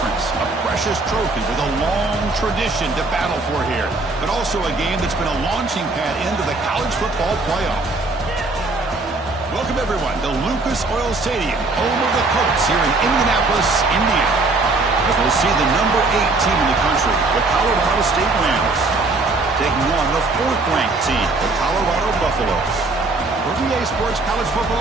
A precious trophy with a long tradition to battle for here. But also a game that's been a launching pad into the college football playoff. Welcome, everyone, to Lucas Oil Stadium, home of the Colts here in Indianapolis, Indiana. As we'll see the number 8 team in the country, the Colorado State Rams, taking on the 4th-ranked team, the Colorado Buffaloes. For VA Sports College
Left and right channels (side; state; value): left; quieter; 3.3 dB